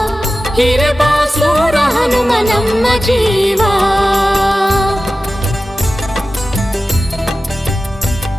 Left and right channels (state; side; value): normal; both; correlation 0.94